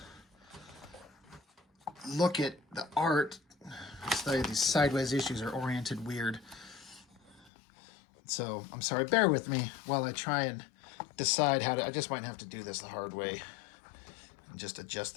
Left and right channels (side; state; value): right; drops out; at 7.5 s